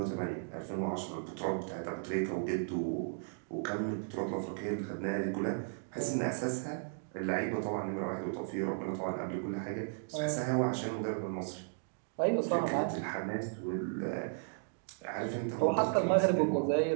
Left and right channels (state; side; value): silent; left; digital silence